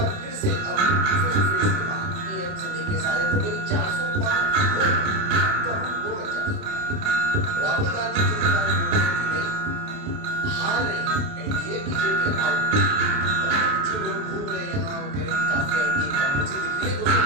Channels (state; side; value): late; left; 28 ms